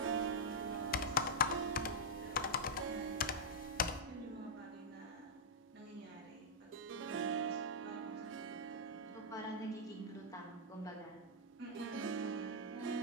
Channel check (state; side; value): normal; both; correlation -0.07